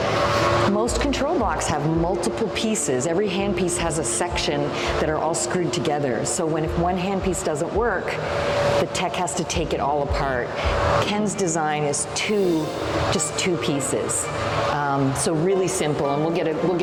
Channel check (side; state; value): both; identical; correlation 1.00